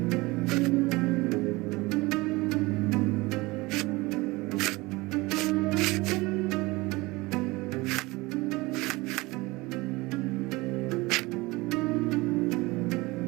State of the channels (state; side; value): quieter; left; 22.4 dB